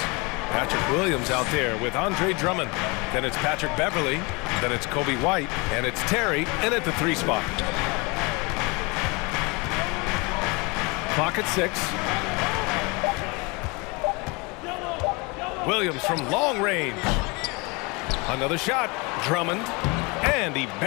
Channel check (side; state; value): right; quieter; 27.7 dB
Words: Patrick Williams out there with Andre Drummond. Then it's Patrick Beverly. Then it's Kobe White. And it's Terry in at the 3 spot. Clock at 6. Williams from long range. Another shot. Drummond. And he